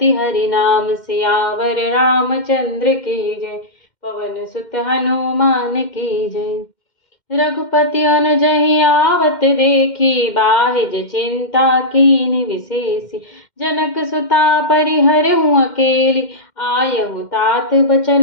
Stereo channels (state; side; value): late; right; 2.1 ms